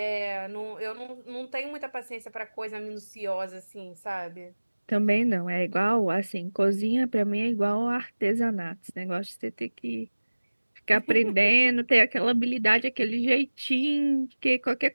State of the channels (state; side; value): inverted; both; correlation -1.00